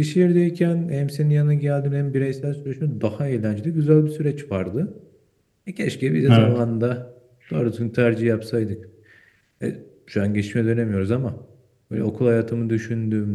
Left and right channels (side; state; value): both; identical; correlation 1.00